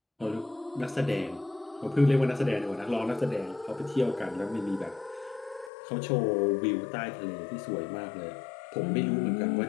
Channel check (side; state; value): right; drops out; at 5.7 s